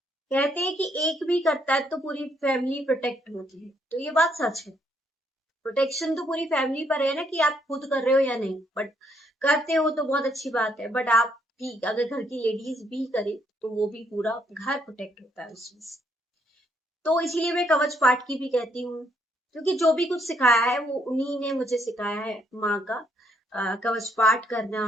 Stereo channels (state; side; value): normal; both; correlation 0.72